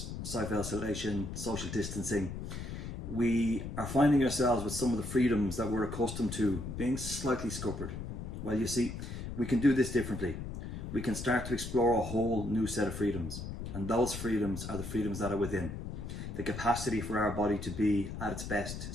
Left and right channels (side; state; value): left; noise; rumble, 7 dB below the sound